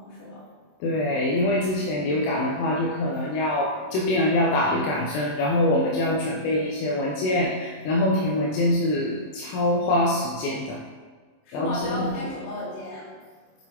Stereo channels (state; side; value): late; right; 27 ms